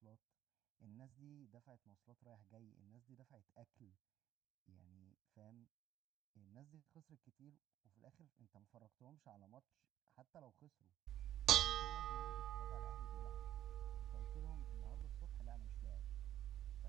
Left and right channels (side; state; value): left; quieter; 12.0 dB